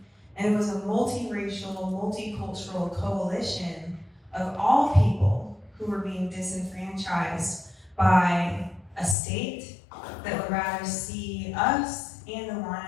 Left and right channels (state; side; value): drops out; right; at 9.2 s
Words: And it was a multiracial, multicultural coalition of all people who were being disenfranchised by a state that would rather see us and the